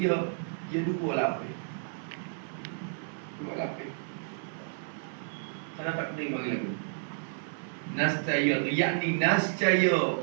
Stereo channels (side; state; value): left; silent; 56 dB below the other